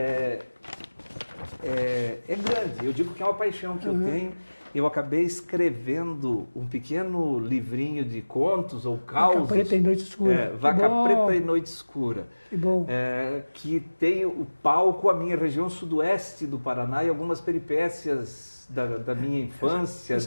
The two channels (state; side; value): inverted; both; correlation -1.00